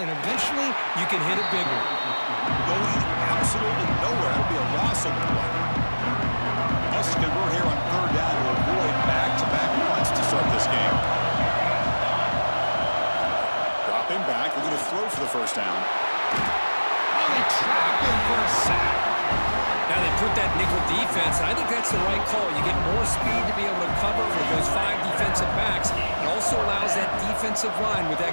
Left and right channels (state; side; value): inverted; both; correlation -1.00